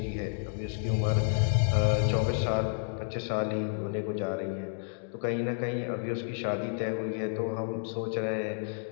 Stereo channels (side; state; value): right; silent; digital silence